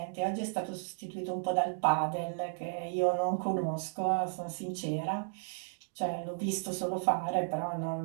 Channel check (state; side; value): silent; left; digital silence